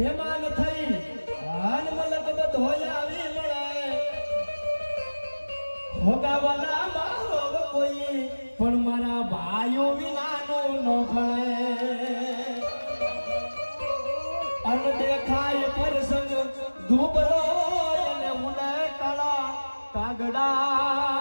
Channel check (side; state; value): both; inverted; correlation -1.00